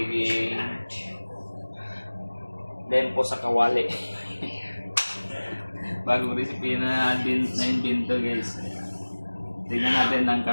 lempo sa kawali. Bagong recipe na invento guys. Tingnan natin ang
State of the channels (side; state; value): both; inverted; correlation -1.00